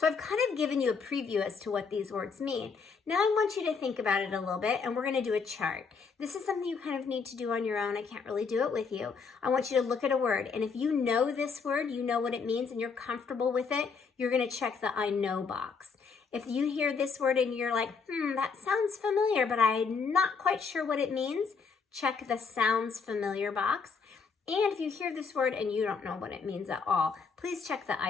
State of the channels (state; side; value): quieter; right; 5.4 dB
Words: I've kind of given you a preview as to what these words mean. Now I want you to think about it a little bit, and we're going to do a chart. This is something you kind of need to do on your own. I can't really do it with you. I want you to look at a word, and if you know this word, you know what it means, and you're comfortable with it, you're going to check the I know box. If you hear this word and you're like, that sounds familiar, but I'm not quite sure what it means, check the sounds familiar box. And if you hear this word and you don't know what it means at all, please check the